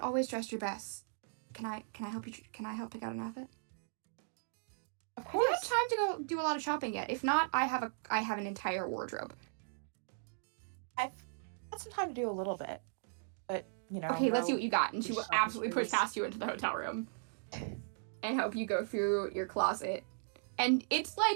dress your best. Can I help you? Can I help pick out an outfit? Of Have you had course. time to go do a lot of shopping yet? If not, I have an entire wardrobe. I've had some time to do a little bit, but Okay, let's see what you got. And she will shopping absolutely push sprees. past you into the hotel room and help you go through your closet. And it's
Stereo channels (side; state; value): left; silent; digital silence